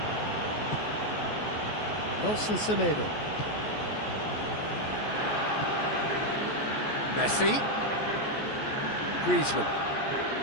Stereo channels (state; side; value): late; right; 14 ms